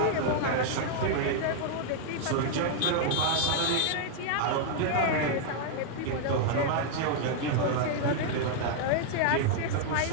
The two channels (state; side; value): different; both; correlation 0.00